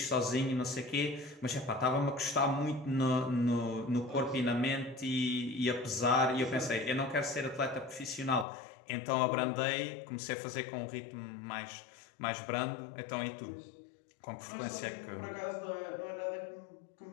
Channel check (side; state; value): right; drops out; at 8.5 s